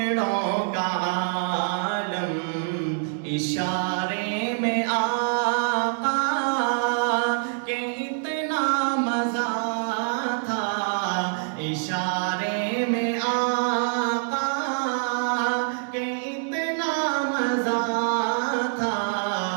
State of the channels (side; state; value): left; silent; digital silence